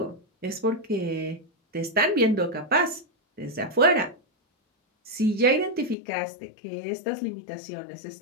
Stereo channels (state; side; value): drops out; right; at 6.0 s